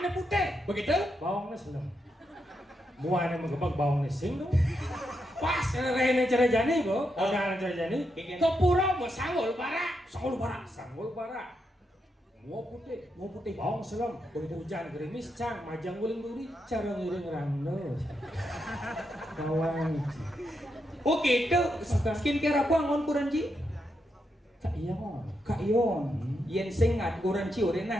putih. Begitu? Bawangnya seneng. Muanya mengebak bawangnya sing dong. Pas rene cerejani bu. Odalan cerejani. Kepura mau sanggul bara. Sanggul bara. Sanggul bara. Mua putih. Mau putih. Bawang selam. Hujan gerimis cang. Majang guling duri. Cara ngiring rando. Bawang. Oh gitu. Skincare apa angon kurang ji? Kak iya mon. Kak Ion. Yen sing ngat kurang ci urang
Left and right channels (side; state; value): both; normal; correlation 0.83